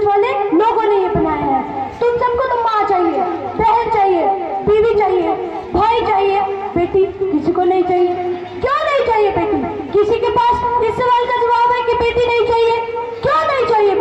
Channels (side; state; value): both; identical; correlation 1.00